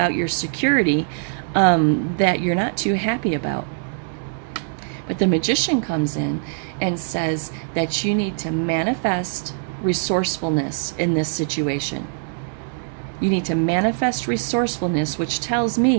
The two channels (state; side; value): silent; left; digital silence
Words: your security that you're not too happy about. But the Magician comes in and says that you need to manifest resourcefulness in this situation. You need to manifest resourcefulness, which tells